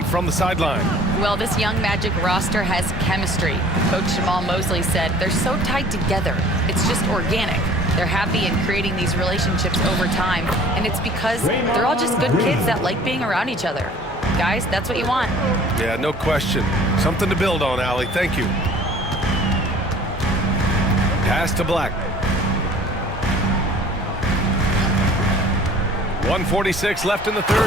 from the sideline. Well, this young Magic roster has chemistry. Coach Jamal Mosley said they're so tied together. It's just organic. They're happy in creating these relationships over time, and it's because they're all just good kids that like being around each other. Guys, that's what you want. Yeah, no question. Something to build on, Allie. Thank you. Pass to Black. 1:46 left in the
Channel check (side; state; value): both; normal; correlation 0.50